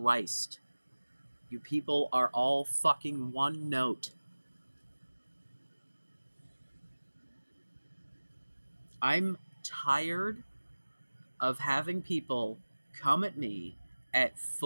You people are all fucking one note. I'm tired of having people come at me at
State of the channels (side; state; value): both; inverted; correlation -1.00